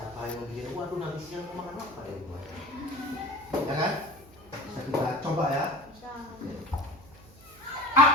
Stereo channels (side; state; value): right; noise; hum, 23 dB below the sound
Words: yang memiliki waduh nanti siang mau makan apa ya rumah. Ya kan? Bisa kita coba ya.